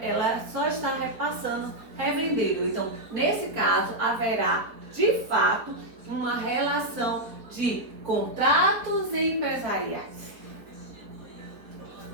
só está repassando, revendendo. Então, nesse caso, haverá, de fato, uma relação de contratos empresariais.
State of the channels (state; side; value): late; left; 4.4 ms